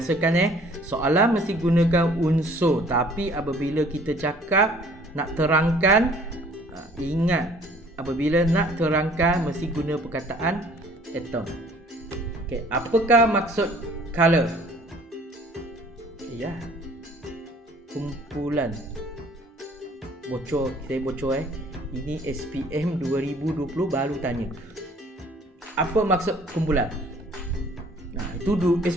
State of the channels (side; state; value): both; normal; correlation 0.55